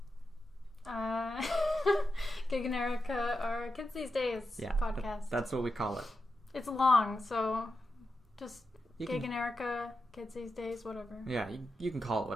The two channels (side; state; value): both; normal; correlation 0.89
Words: Gig and Erika, our Kids These Days podcast. That's what we call it. It's long, so just Gig and Erika, Kids These Days, whatever. Yeah, you can call it